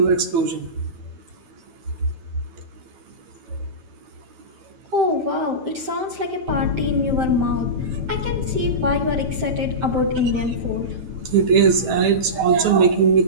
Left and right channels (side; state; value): left; late; 9.1 ms